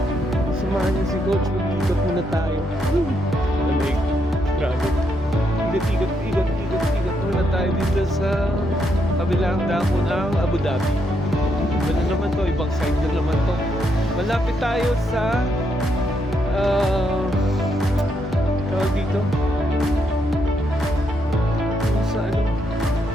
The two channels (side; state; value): both; normal; correlation 0.78